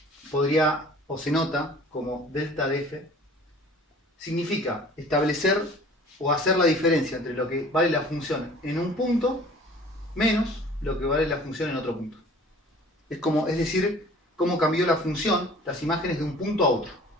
podría o se nota como delta de f, significa establecer o hacer la diferencia entre lo que vale la función en un punto menos lo que vale la función en otro punto. Es decir, cómo cambió la función, las imágenes de un punto a otro,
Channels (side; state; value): both; normal; correlation 0.48